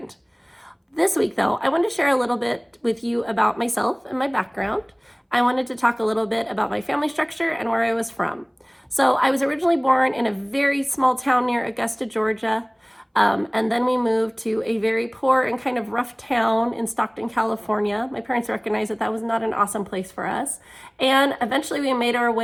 This week, though, I wanted to share a little bit with you about myself and my background. I wanted to talk a little bit about my family structure and where I was from. So I was originally born in a very small town near Augusta, Georgia. And then we moved to a very poor and kind of rough town in Stockton, California. My parents recognized that that was not an awesome place for us. And eventually we made our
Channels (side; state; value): both; identical; correlation 1.00